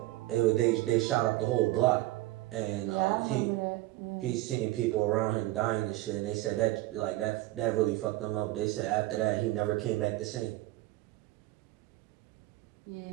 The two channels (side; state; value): left; quieter; 17.8 dB